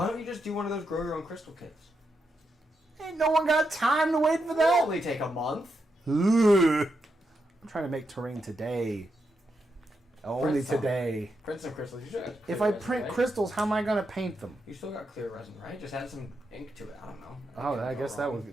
don't you just do one of those grow your own crystal kits? Ain't no one got time to wait for That'll that. only take a month. Ugh. I'm trying to make terrain today. Only Print some. today. Print some crystals. You still got If clear I resin, print right? crystals, how am I gonna paint them? You still got clear resin, right? Just add some ink to it. I don't know. Oh, I guess that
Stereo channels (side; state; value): both; normal; correlation 0.84